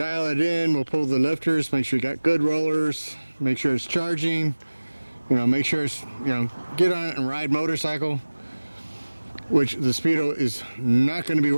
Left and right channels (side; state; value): both; inverted; correlation -1.00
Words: it in, we'll pull the lifters, make sure you got good rollers, make sure it's charging, you know, make sure it's, you know, get on it and ride motorcycle, which the Speedo is not going to be